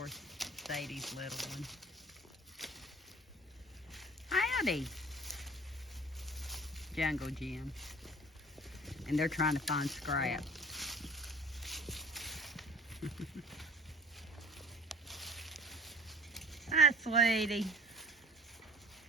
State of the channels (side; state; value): both; normal; correlation 0.47